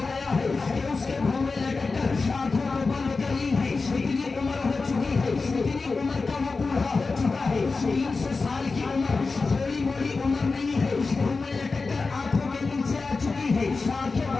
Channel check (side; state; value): right; quieter; 4.1 dB